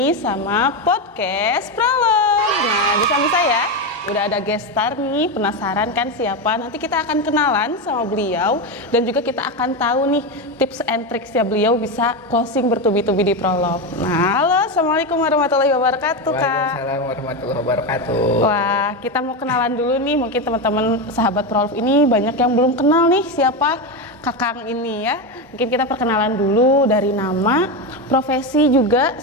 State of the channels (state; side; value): normal; both; correlation 0.13